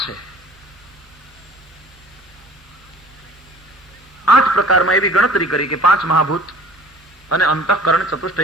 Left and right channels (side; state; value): both; normal; correlation 0.48